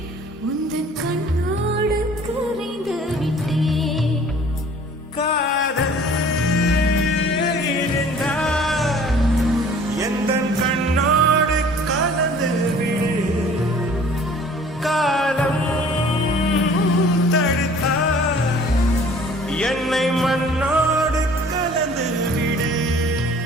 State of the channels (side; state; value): both; normal; correlation 0.51